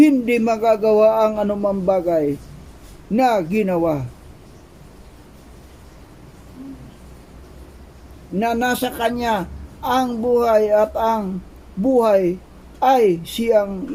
magagawa ang anumang bagay na ginawa. Na nasa kanya ang buhay at ang buhay ay siyang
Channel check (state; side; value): identical; both; correlation 1.00